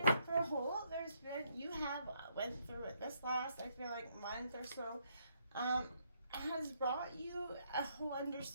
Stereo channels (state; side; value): inverted; both; correlation -0.73